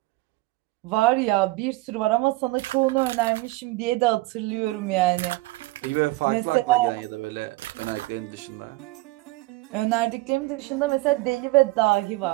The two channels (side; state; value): left; quieter; 20.7 dB